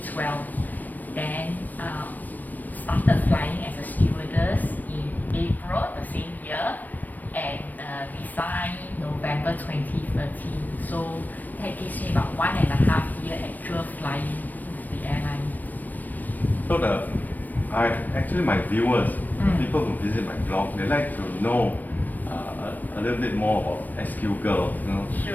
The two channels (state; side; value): late; right; 0.083 ms